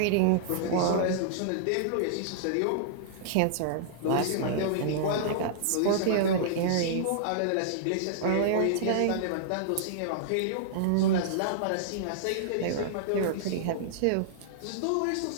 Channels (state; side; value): different; both; correlation -0.02